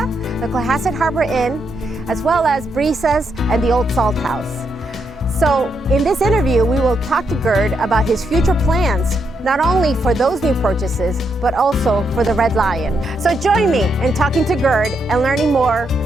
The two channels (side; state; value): both; normal; correlation 0.79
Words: the Cohasset Harbor Inn, as well as Brisas and the Olde Salt House. So in this interview, we will talk to Gerd about his future plans, not only for those new purchases, but also for the Red Lion. So join me in talking to Gerd and learning more